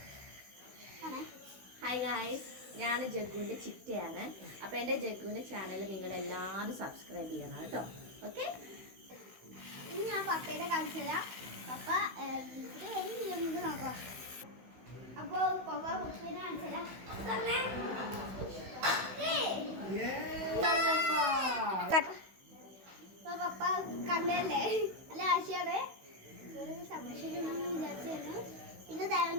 ഹായ് ഗായ്സ്, ഞാൻ ജഗ്ഗുവിൻ്റെ ചിറ്റയാണ്. അപ്പോൾ എൻ്റെ ജഗ്ഗുവിൻ്റെ ചാനൽ നിങ്ങളെല്ലാവരും സബ്സ്ക്രൈബ് ചെയ്യണം കേട്ടോ. ഓക്കെ, ഇനി ഞാൻ പപ്പയുടെ കാണിച്ചു തരാം. പപ്പ നമുക്ക് നോക്കാം. അപ്പോൾ പപ്പ പപ്പേനെ കാണിച്ചു തരാം. പപ്പ കണ്ടല്ലേ, നല്ല ആശയാണ്. ഒരു സംരക്ഷണം വിചാരിച്ചായിരുന്നു. പിന്നെ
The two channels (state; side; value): late; left; 16 ms